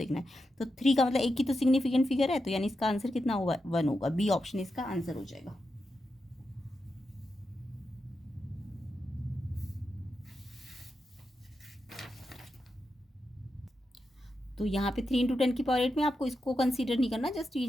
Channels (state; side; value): normal; both; correlation 0.87